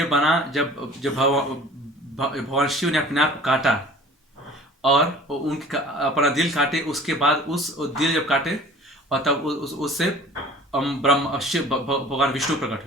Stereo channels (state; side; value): normal; both; correlation 0.46